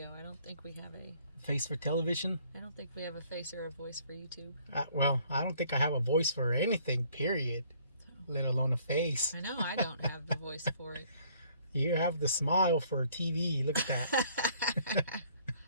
I don't think we have a. face for television. I don't think we have a face or a voice for YouTube. Well, I don't think I have a voice for anything. Period. Let alone a face. I know I don't have the voice for it. You have the smile for TV. Look at that.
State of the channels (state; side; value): inverted; both; correlation -0.60